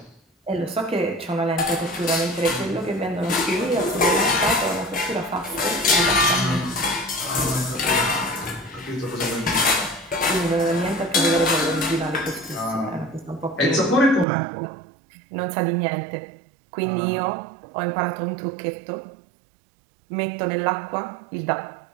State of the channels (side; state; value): left; drops out; at 14.2 s